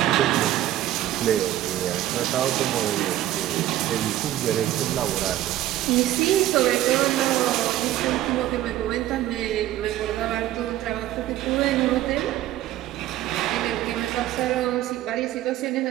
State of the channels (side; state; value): left; quieter; 13.8 dB